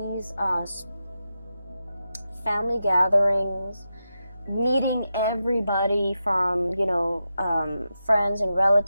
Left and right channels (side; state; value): both; inverted; correlation -0.89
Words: family gatherings, meeting everybody from, you know, friends and